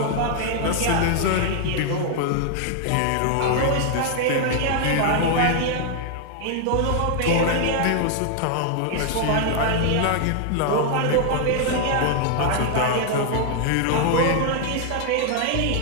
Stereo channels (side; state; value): both; different; correlation 0.00